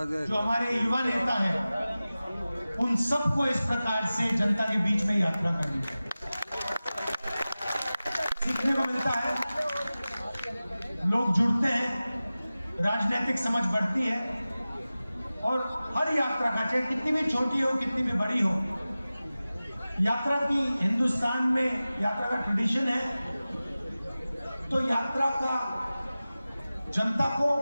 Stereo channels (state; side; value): inverted; both; correlation -0.96